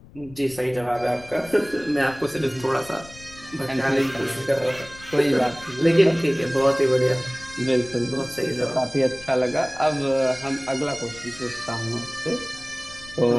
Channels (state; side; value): noise; left; rumble, 20 dB below the sound